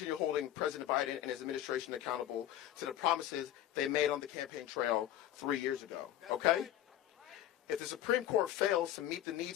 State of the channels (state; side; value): quieter; right; 12.1 dB